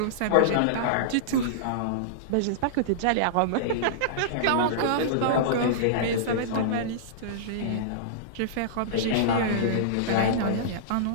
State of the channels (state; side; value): different; both; correlation -0.03